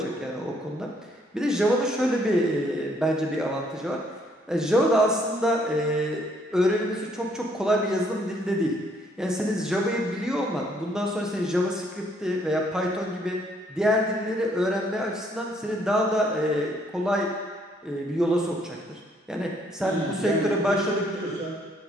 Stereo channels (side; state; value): both; normal; correlation 0.67